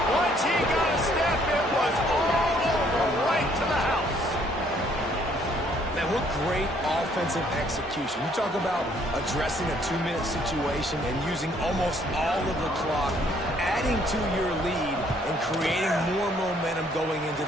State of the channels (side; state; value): both; normal; correlation 0.64